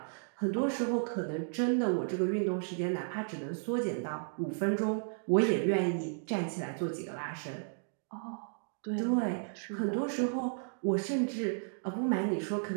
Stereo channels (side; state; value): left; silent; digital silence